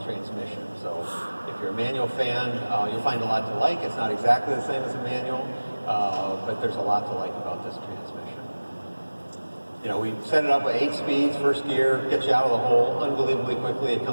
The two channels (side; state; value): both; inverted; correlation -1.00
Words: transmission. So if you're a manual fan, you'll find a lot to like. It's not exactly the same as a manual, but there's a lot to like about this transmission. We set it up with 8 speeds, first gear, gets you out of the hole unbelievably quickly. It